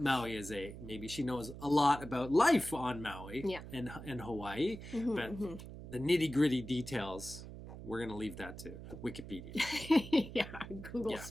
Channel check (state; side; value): noise; right; hum, 12 dB below the sound